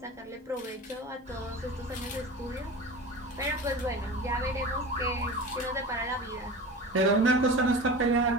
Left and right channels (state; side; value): normal; both; correlation 0.33